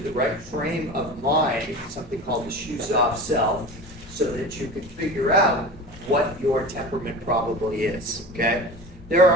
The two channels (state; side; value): normal; both; correlation 0.33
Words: the right frame of mind, something called the shoes off self, so that you can figure out what your temperament probably is. Okay? There